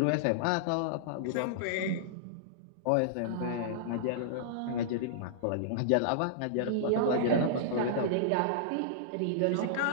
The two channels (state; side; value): different; both; correlation -0.02